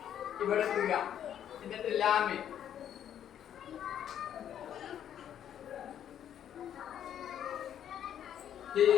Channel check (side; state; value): right; quieter; 9.9 dB